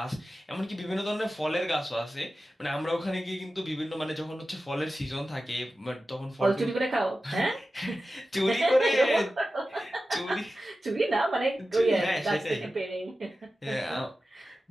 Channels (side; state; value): both; normal; correlation 0.94